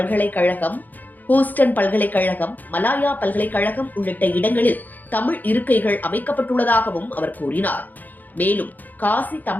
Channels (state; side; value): late; right; 0.084 ms